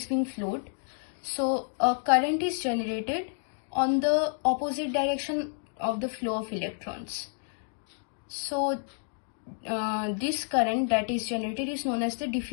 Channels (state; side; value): silent; right; 58 dB below the other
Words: being flowed, so a current is generated on the opposite direction of the flow of electrons. So this current that is generated is known as the